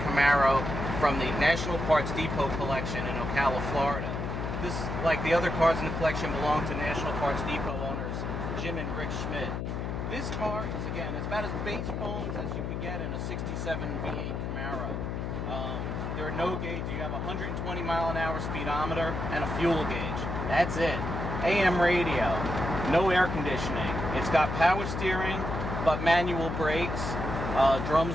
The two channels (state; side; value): noise; left; hum, 3 dB below the sound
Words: Camaro from the National Parts Depot collection in Ocala, Florida. This, like the other cars in the collection, belong to National Parts Depot owners Jim and Rick Schmidt. This car is, again, it's about as base bones as you could get in a 67 V8 Camaro. There are no gauge. You have a 120-mile-an-hour speedometer and a fuel gauge. That's it. AM radio. No air conditioning. It's got power steering, but manual brakes,